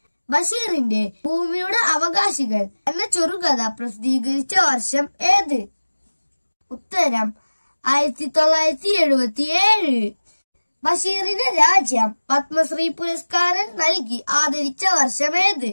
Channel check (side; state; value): both; inverted; correlation -1.00